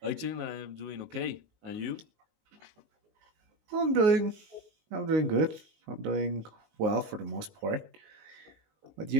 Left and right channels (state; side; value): late; left; 19 ms